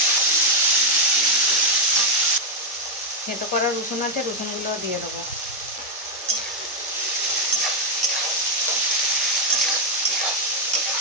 থেঁতো করা রসুন আছে, রসুনগুলো দিয়ে দেবো।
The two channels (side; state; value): both; normal; correlation 0.02